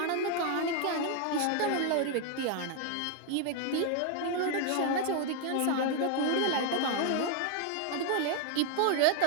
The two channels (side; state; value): both; different; correlation 0.00